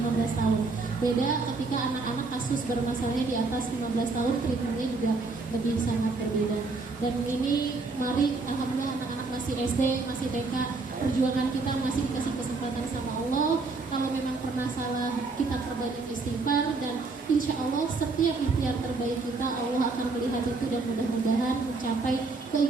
tahun. Beda ketika anak-anak kasus bermasalahnya di atas 15 tahun, treatmentnya juga lebih sangat berbeda. Dan ini mari alhamdulillah anak-anak masih SD, masih TK, perjuangan kita masih dikasih kesempatan sama Allah. Kalau memang pernah salah, kita perbanyak istighfar, dan insya Allah setiap ikhtiar terbaik kita Allah akan melihat itu, dan mudah-mudahan mencapai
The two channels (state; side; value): quieter; left; 3.8 dB